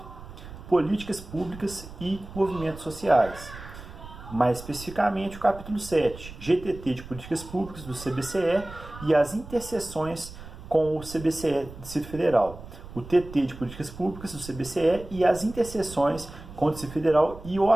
Políticas Públicas e Movimentos Sociais. Mais especificamente o capítulo 7, GTT de Políticas Públicas do CBCE e as interseções com o CBCE do Distrito Federal. O TT de Políticas Públicas do CBCE e as interseções com o Distrito Federal e o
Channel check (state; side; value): noise; right; rumble, 15 dB below the sound